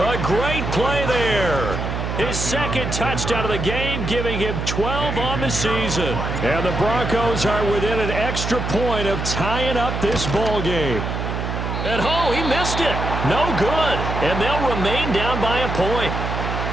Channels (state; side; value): noise; right; hum, 3 dB below the sound